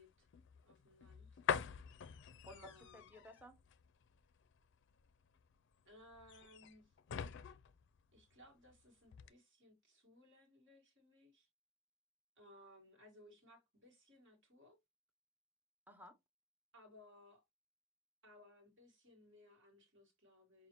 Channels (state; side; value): quieter; right; 6.9 dB